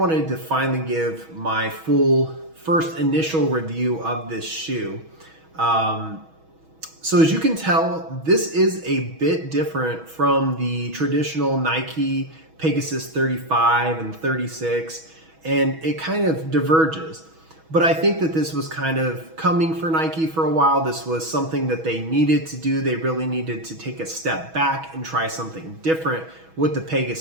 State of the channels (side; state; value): left; late; 6.2 ms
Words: to finally give my full first initial review of this shoe. So as you can tell, this is a bit different from the traditional Nike Pegasus 35 and 36, and it kind of diverges. But I think that this was kind of coming for Nike for a while. This was something that they needed to do. They really needed to take a step back and try something different with the